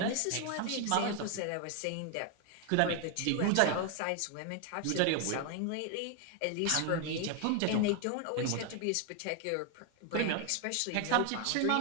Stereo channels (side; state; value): both; different; correlation 0.00